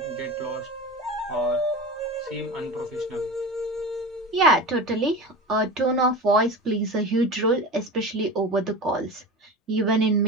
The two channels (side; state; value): both; normal; correlation 0.29